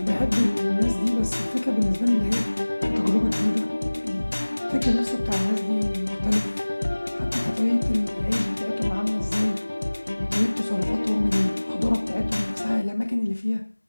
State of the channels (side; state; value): both; inverted; correlation -1.00